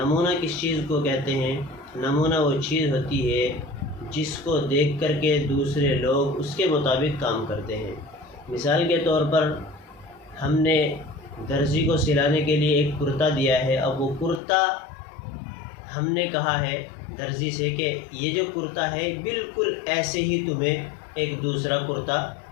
کس چیز کو کہتے ہیں؟ نمونہ وہ چیز ہوتی ہے جس کو دیکھ کر کے دوسرے لوگ اس کے مطابق کام کرتے ہیں۔ مثال کے طور پر ہم نے درزی کو سلانے کے لیے ایک کرتا دیا ہے، اب وہ کرتا ہم نے کہا ہے درزی سے کہ یہ جو کرتا ہے بالکل ایسے ہی تمہیں ایک دوسرا کرتا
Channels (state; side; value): drops out; right; at 14.4 s